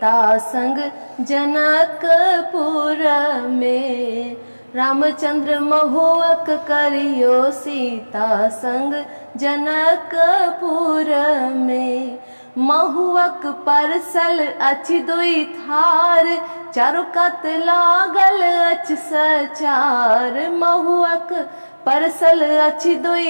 संग जनकपुर में। रामचंद्र महुआक करियो सीता संग जनकपुर में। महुआक परसल अछि दुई थार, चारो कात लागल अछि सचार। महुआक परसल अछि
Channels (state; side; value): inverted; both; correlation -1.00